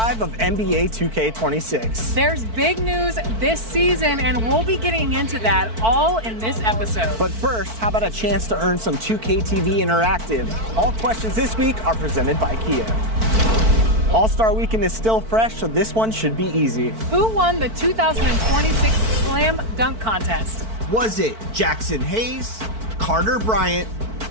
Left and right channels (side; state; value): left; late; 4.5 ms